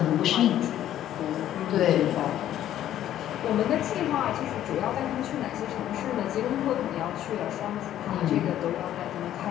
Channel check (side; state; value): right; quieter; 11.9 dB